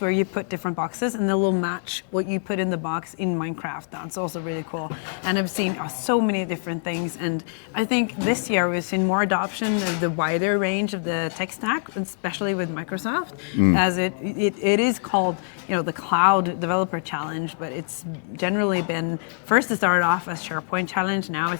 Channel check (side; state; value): right; silent; digital silence